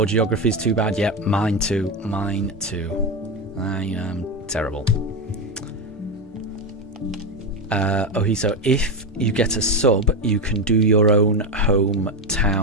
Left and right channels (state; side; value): normal; both; correlation 0.13